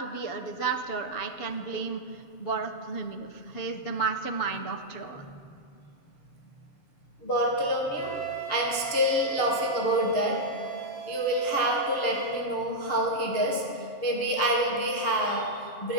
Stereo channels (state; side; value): late; right; 6.8 ms